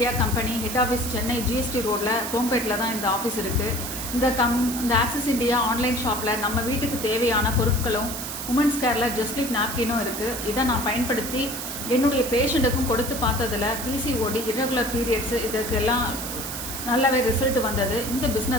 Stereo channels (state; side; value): noise; right; hiss, 6 dB below the sound